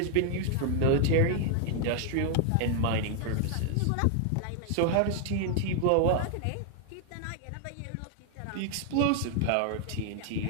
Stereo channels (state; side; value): different; both; correlation 0.00